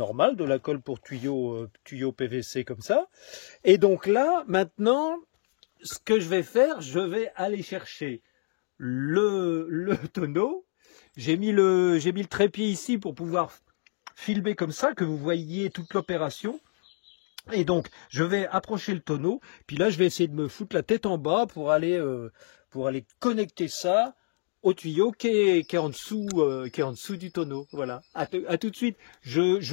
de la colle pour tuyau PVC comme ça. Et donc là, maintenant, ce que je vais faire, je vais aller chercher le tonneau. J'ai mis le trépied ici pour pouvoir filmer comme ça, que vous voyez toute l'opération. Et donc, je vais approcher le tonneau, puis là, je vais essayer de me foutre la tête en bas pour aller connecter ça au tuyau qui est en dessous du tonneau. Voilà. À tout de suite.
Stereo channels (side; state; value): right; silent; digital silence